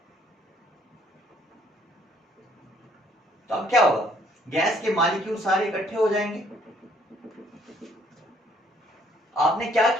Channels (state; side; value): normal; both; correlation 0.64